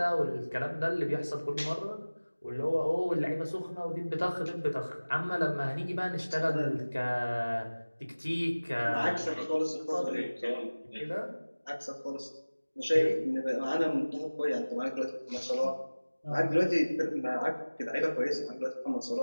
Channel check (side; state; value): both; inverted; correlation -1.00